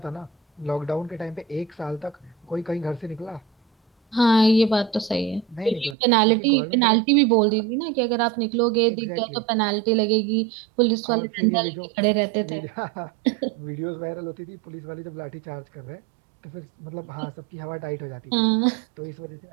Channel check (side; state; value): left; drops out; at 6.0 s